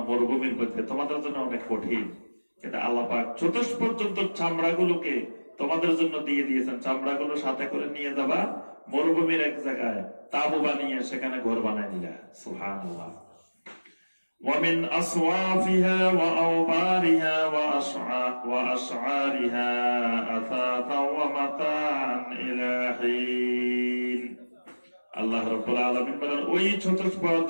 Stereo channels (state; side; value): inverted; both; correlation -1.00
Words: মরুভূমির মধ্যে তোমাদের জন্য অনেক কঠিন, কিন্তু আল্লাহ পাক চতুষ্পদ জন্তুর চামড়াগুলোকে তোমাদের জন্য দিয়ে দিয়েছেন। চামড়াগুলো সাথে করে নিয়ে যাবা মরুভূমির এক জায়গায়, তাবু বানিয়ে সেখানে ঘর বানায় দিলা। সুবহানাল্লাহ। ومن أصوافها وأوبارها وأشعارها أثاثا ومتاعا إلى حين। আল্লাহ রাব্বুল আলামিন বলেন ওই চতুষ্পদ